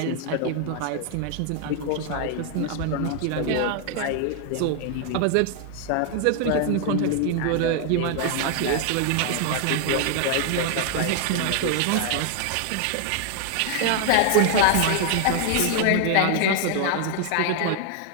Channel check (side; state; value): both; different; correlation 0.00